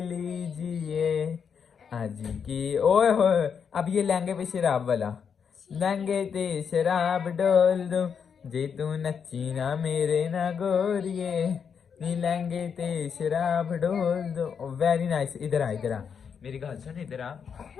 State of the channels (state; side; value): quieter; right; 6.8 dB